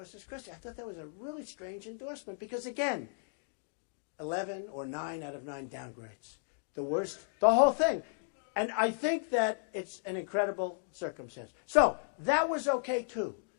Christie. I thought that was a really strange endorsement because, again, 11 or 9 out of 9 downgrades. The worst, the whole thing. And I think that it's an incredible circumstance. So that was okay too.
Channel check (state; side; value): silent; right; digital silence